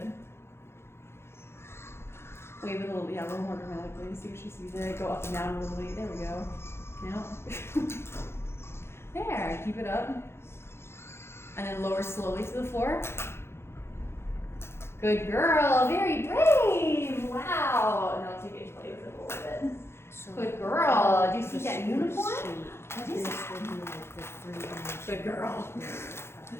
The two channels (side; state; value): right; late; 0.12 ms